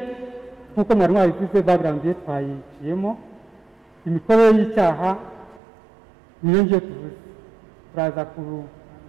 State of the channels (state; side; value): drops out; left; at 5.6 s